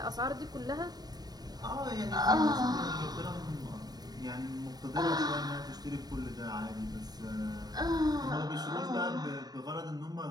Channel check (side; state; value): left; late; 0.19 ms